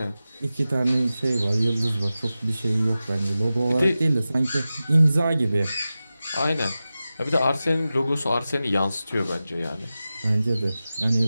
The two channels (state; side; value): inverted; both; correlation -0.94